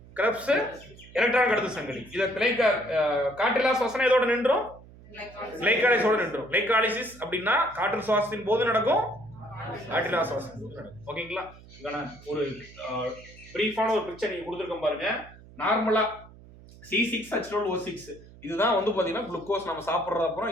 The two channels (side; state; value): right; noise; hum, 21 dB below the sound